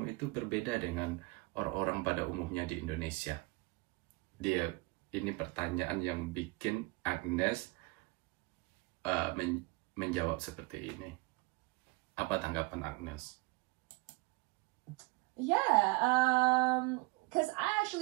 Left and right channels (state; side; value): quieter; left; 24.6 dB